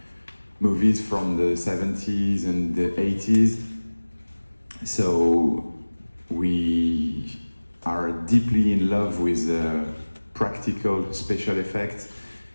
movies from the 70s and the 80s. So we are deeply in love with practical special effects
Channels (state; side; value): inverted; both; correlation -1.00